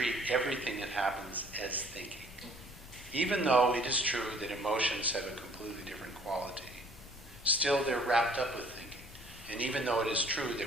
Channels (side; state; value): left; noise; rumble, 20 dB below the sound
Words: everything that happens as thinking. Even though it is true that emotions have a completely different quality, still they're wrapped up with thinking. And even though it is true